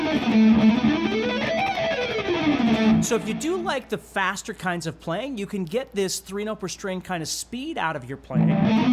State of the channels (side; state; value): both; identical; correlation 1.00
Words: So if you do like the faster kinds of playing, you can get this 3 note per string kind of speed out of your playing